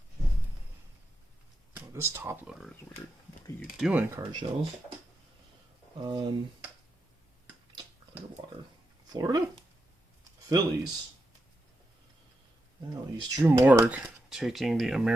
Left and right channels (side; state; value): both; normal; correlation 0.86